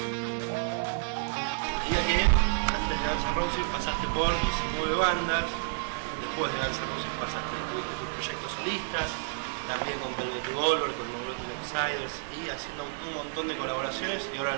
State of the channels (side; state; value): left; silent; digital silence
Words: que antes de Guns N' Roses pasaste por 19 bandas, después de Guns N' Roses tuviste tus proyectos solistas, también con Revolver, con Neurotic Outsiders y haciendo un montón de colaboraciones y ahora